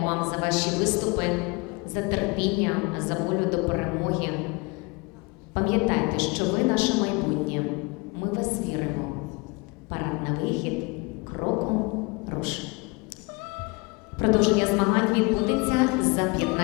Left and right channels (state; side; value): quieter; right; 28.5 dB